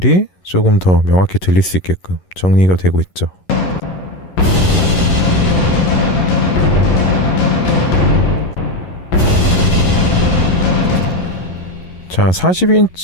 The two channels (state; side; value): late; right; 11 ms